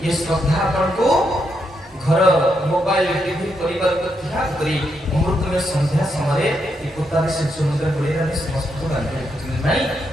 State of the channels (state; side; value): normal; both; correlation 0.80